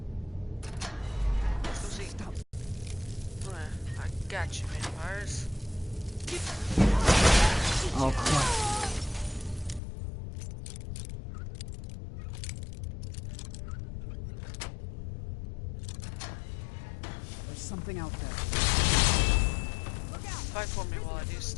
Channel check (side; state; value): right; drops out; at 9.8 s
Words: Let's go see. Stop. I got you, vampires. Oh, crap. There's something out there. Fight for me while I do